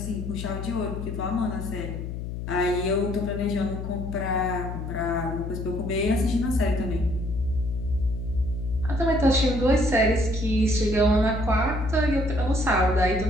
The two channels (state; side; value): noise; left; hum, 6 dB below the sound